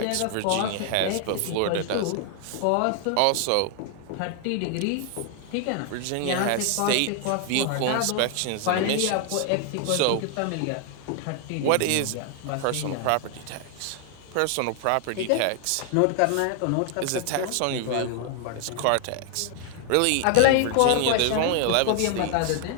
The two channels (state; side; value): different; both; correlation 0.00